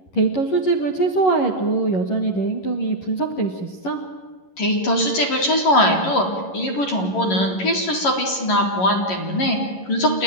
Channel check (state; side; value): late; right; 11 ms